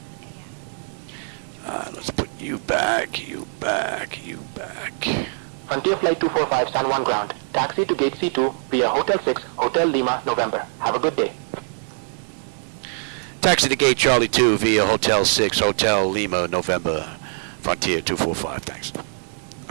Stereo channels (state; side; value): silent; left; 63 dB below the other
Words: a.m. Let's put you back, you back, you back. Frontier Flight 245 San Juan ground. Taxi to gate C2 via Hotel 6, Hotel Lima, November. Have a good day. Taxi to gate Charlie 2 via Hotel 6, Hotel Lima, November. Frontier 245, thanks.